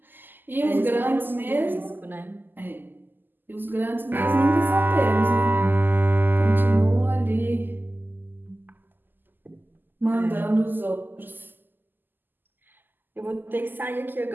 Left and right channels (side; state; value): left; late; 0.091 ms